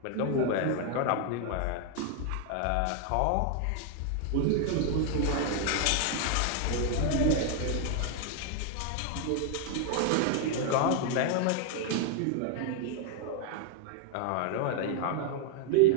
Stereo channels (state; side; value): different; both; correlation 0.00